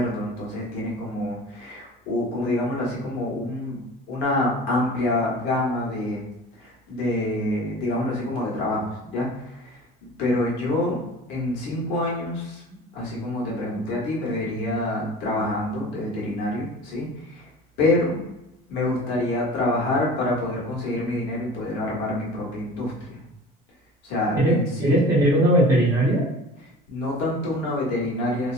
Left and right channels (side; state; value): both; normal; correlation 0.40